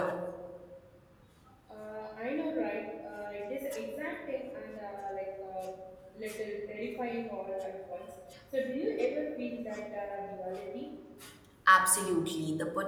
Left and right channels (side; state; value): both; identical; correlation 1.00